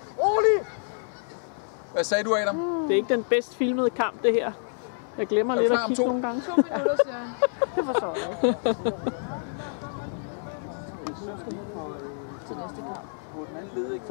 Rolig! Hvad sagde du, Adam? Det er ikke den bedst filmede kamp, det her. Jeg glemmer lidt at kigge nogle gange. 2 minutter, siger han. Det forstår jeg ikke.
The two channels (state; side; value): silent; right; digital silence